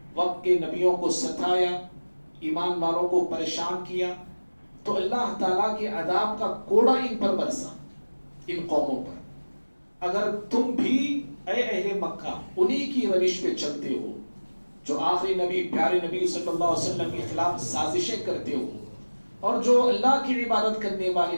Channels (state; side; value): inverted; both; correlation -1.00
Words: وقت کے نبیوں کو ستایا، ایمان والوں کو پریشان کیا، تو اللہ تعالیٰ کے عذاب کا کوڑا ان پر برسا، ان قوموں پر. اگر تم بھی اے اہل مکہ انہی کی روش پہ چلتے ہو جو آخری نبی پیارے نبی صلی اللہ علیہ وسلم کے خلاف سازشیں کرتے ہو، اور جو اللہ کی عبادت کرنے والے